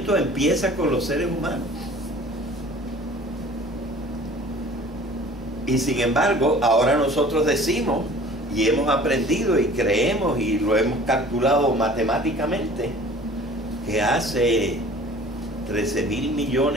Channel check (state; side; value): normal; both; correlation 0.47